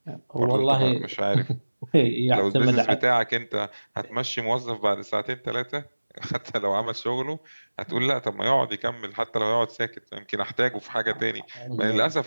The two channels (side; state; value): both; inverted; correlation -1.00